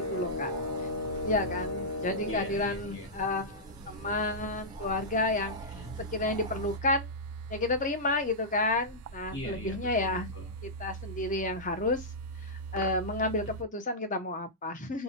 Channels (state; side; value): normal; both; correlation -0.12